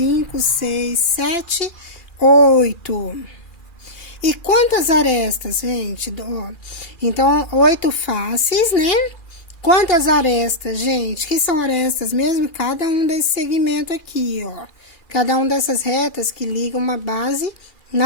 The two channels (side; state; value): right; late; 2.4 ms